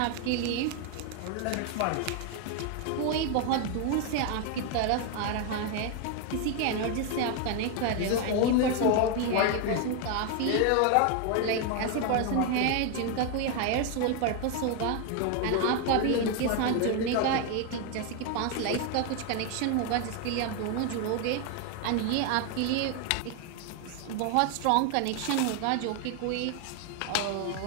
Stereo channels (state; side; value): different; both; correlation 0.01